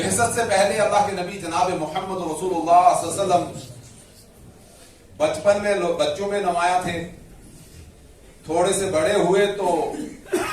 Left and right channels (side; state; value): both; identical; correlation 1.00